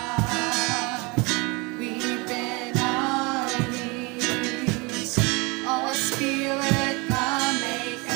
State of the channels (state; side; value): quieter; left; 27.5 dB